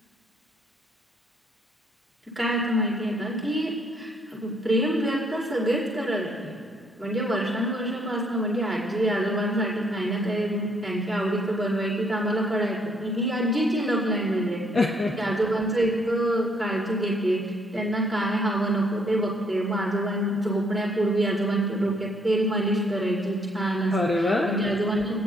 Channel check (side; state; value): both; normal; correlation 0.67